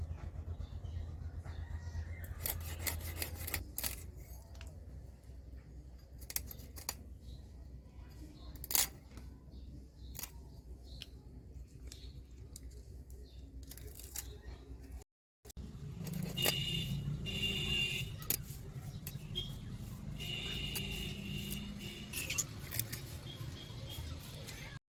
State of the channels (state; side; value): identical; both; correlation 1.00